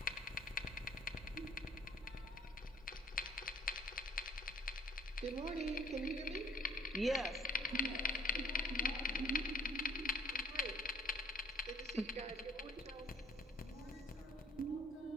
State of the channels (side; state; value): both; normal; correlation 0.59